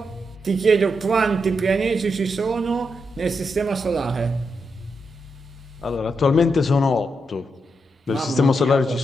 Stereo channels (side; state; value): both; normal; correlation 0.83